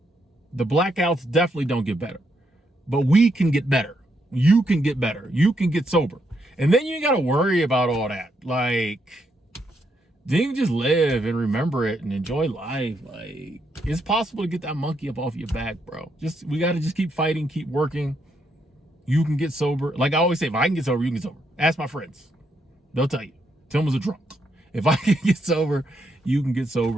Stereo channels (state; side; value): normal; both; correlation 0.78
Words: The blackouts definitely don't get better, but we can get better. You can get better. You can get sober. And then you ain't got to worry about all that. Like, then you can just live and remember it and enjoy life. Like, it's possible to get that monkey up off your back, bro. We got to just keep fighting, keep working. You can get sober. Like I always say, if I can get sober, you can get sober. Ask my friends. They'll tell you. Tim was a drunk. If I can get sober, you can get